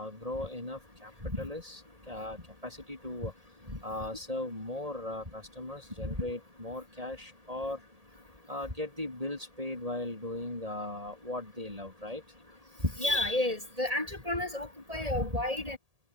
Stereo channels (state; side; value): late; left; 1.8 ms